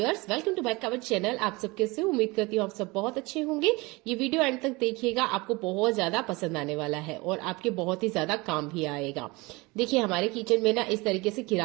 welcome to back our channel. आप सब कैसे हो? उम्मीद करती हूँ आप सब बहुत अच्छे होंगे। ये वीडियो एंड तक देखिएगा, आपको बहुत ज्यादा पसंद आने वाला है और आपके बहुत ही ज्यादा काम भी आएगा। देखिए, हमारे किचन में ना इस तरीके से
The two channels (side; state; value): left; quieter; 24.1 dB